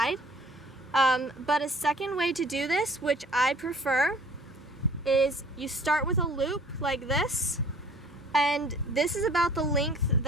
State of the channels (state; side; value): normal; both; correlation 0.52